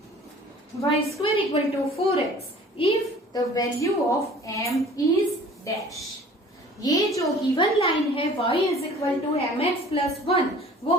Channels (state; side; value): normal; both; correlation 0.48